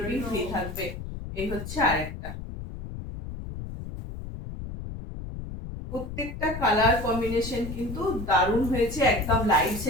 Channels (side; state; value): left; noise; rumble, 9 dB below the sound